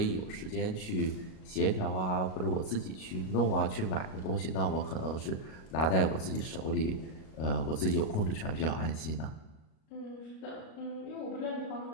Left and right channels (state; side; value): late; right; 38 ms